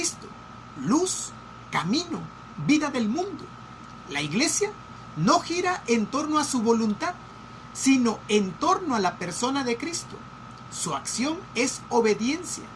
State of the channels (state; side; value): identical; both; correlation 1.00